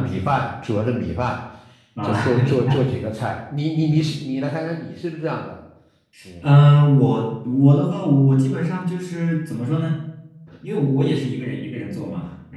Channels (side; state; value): both; identical; correlation 1.00